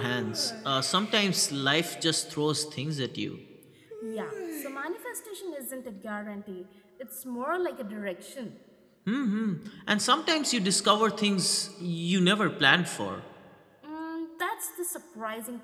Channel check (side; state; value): both; identical; correlation 1.00